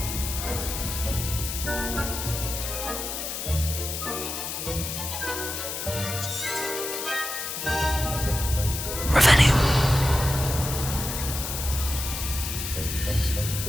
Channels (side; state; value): left; noise; hiss, 5 dB below the sound